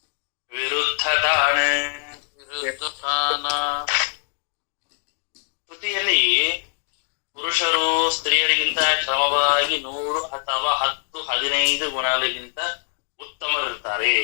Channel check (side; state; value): right; silent; digital silence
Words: ವಿರುದ್ಧತಾನ. ಶ್ರುತಿಯಲ್ಲಿ ಪುರುಷರು ಸ್ತ್ರೀಯರಿಗಿಂತ ಕ್ರಮವಾಗಿ 100 ಅಥವಾ 10, 15 ಗುಣಗಳಿಗಿಂತ ಉತ್ತಮರಿರ್ತಾರೆ.